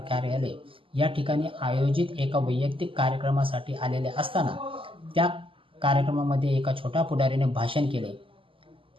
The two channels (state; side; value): late; left; 0.25 ms